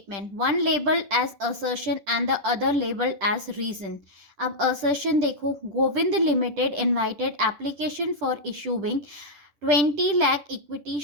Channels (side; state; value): left; late; 10 ms